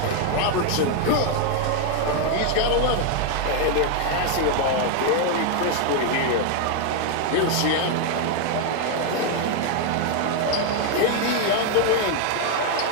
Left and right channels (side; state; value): both; different; correlation 0.01